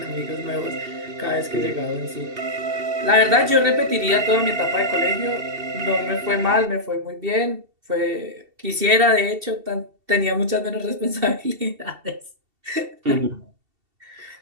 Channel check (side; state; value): left; late; 2.7 ms